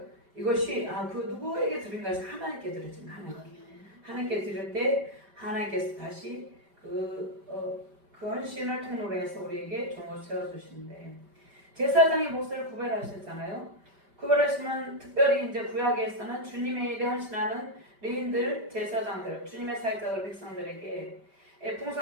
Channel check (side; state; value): left; late; 5.1 ms